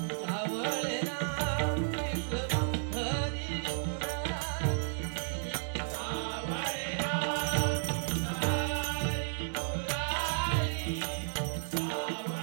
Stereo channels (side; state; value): left; silent; digital silence